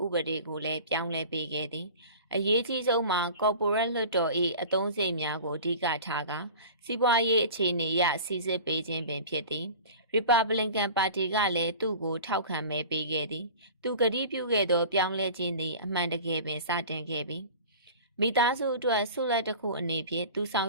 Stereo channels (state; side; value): inverted; both; correlation -0.39